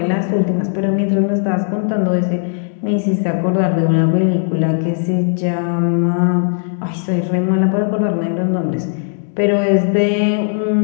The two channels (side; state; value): right; silent; digital silence